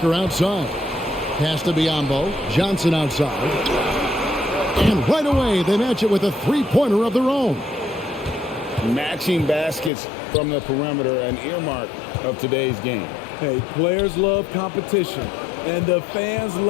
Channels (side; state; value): right; drops out; at 9.9 s